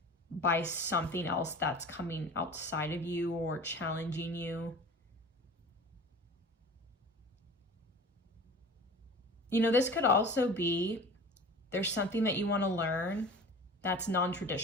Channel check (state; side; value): normal; both; correlation 0.39